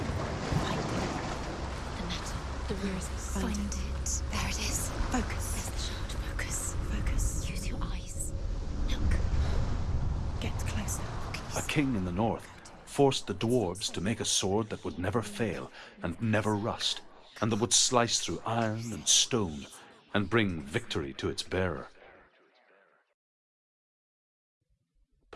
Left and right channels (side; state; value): both; identical; correlation 1.00